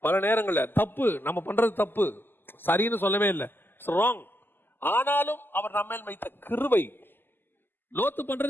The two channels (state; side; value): late; right; 0.096 ms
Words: பல நேரங்கள்ல தப்பு நம்ம பண்றது தப்பு, சரின்னு சொல்லவே இல்லை, ராங். ஆனாலும் அவர் நம்ம மேல் வைத்த கிருபை. லோத்து